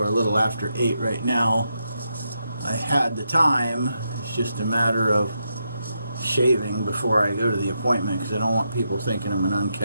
a little after 8 right now, I had the time. It's just a matter of shaving before I go to the appointment, because I don't want people thinking I'm an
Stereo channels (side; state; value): both; inverted; correlation -0.83